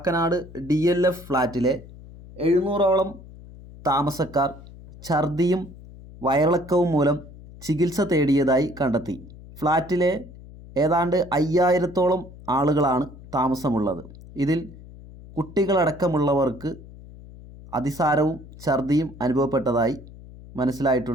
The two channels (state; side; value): noise; left; hum, 18 dB below the sound